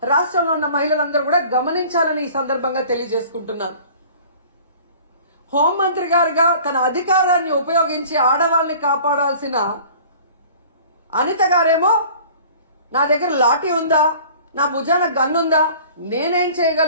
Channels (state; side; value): inverted; both; correlation -0.47